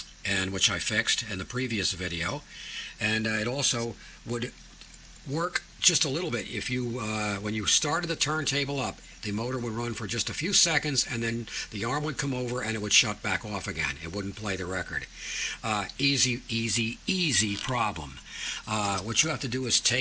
and which I fixed in the previous video, and it also would work just a little bit if you when you started the turntable up, the motor would run for just a few seconds and then the arm would come over and it would shut back off again. It wouldn't play the record. Easy problem. What you have to do is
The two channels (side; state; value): both; identical; correlation 1.00